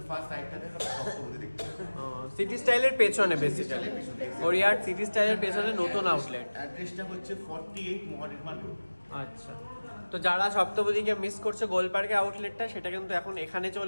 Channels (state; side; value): inverted; both; correlation -1.00